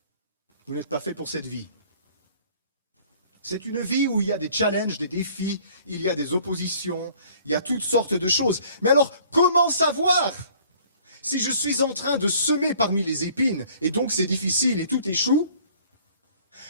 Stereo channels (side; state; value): both; inverted; correlation -0.55